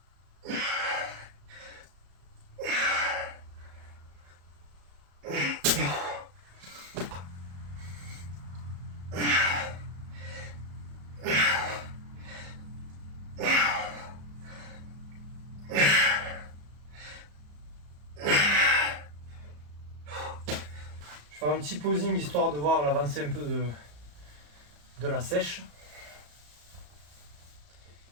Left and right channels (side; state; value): left; late; 34 ms